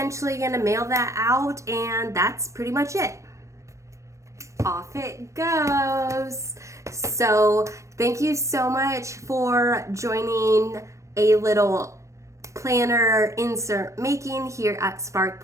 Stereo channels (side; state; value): left; late; 0.15 ms